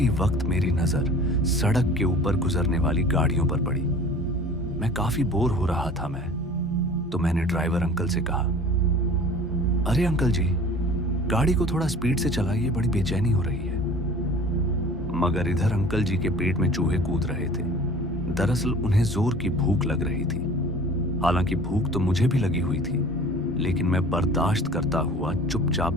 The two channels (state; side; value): normal; both; correlation 0.44